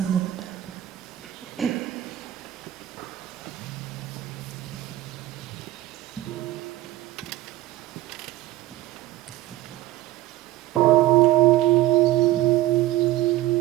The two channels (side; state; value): left; quieter; 15.4 dB